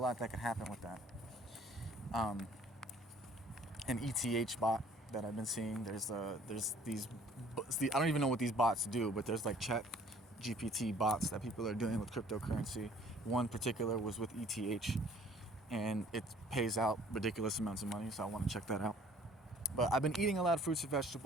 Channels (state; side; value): normal; both; correlation 0.55